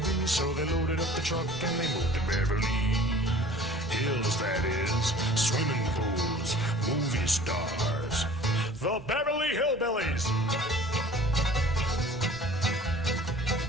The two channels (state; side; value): normal; both; correlation 0.47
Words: be. So they loaded up the truck and they moved to Beverly Hills, that is, swimming pools, movie stars, the Beverly Hillbillies.